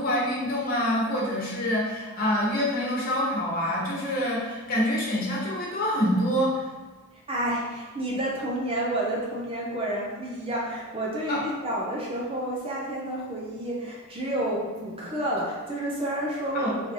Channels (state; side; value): normal; both; correlation 0.28